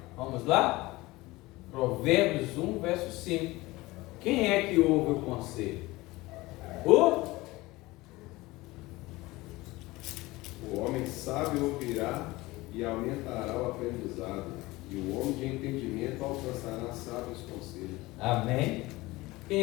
Vamos lá? Provérbios 1, verso 5. Quem é que ouve o conselho? O homem sábio ouvirá e aumentará o aprendizado, e o homem de entendimento alcançará sábios conselhos. Amém?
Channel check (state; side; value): quieter; right; 20.4 dB